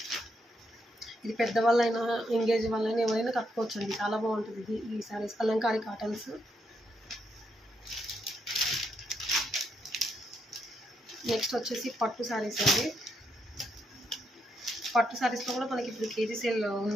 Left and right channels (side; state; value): both; normal; correlation 0.78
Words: ఇది పెద్దవాళ్ళైనా ఎంగేజ్ వాళ్ళైనా ఎవరైనా కట్టుకోవచ్చు అండి, చాలా బాగుంటుంది ఇది. ఈ శారీస్ కలంకారీ కాటన్స్. నెక్స్ట్ వచ్చేసి పట్టు శారీస్ అండి. పట్టు శారీస్లో కూడా మనకి ఇప్పుడు కేజీ సేల్